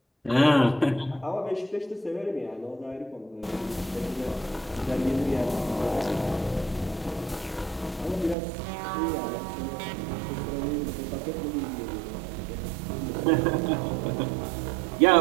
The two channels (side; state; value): left; drops out; at 8.3 s